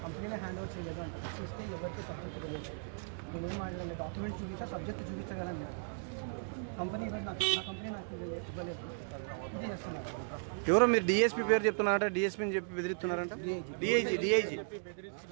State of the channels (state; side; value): silent; left; digital silence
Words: కంపెనీలో హ్యాండ్ ఓవర్ చేయలేదు అంటే చూస్తే ఎవరితో సబ్జెక్ట్ తెలియదు, నేనేం మాట్లాడాలి, డాక్యుమెంట్స్ చూపిస్తే సబ్జెక్ట్ చూపించగలను. కంపెనీ ఈరోజు నా కంపెనీ నాకు ఇవ్వలేదు, ఇది చేస్తున్నారు. ఎవరో మీరు డిఎస్పీ పేరు చెప్తున్నారంట, డిఎస్పీని చెప్పి బెదిరిస్తున్నారంట. డిఐజీ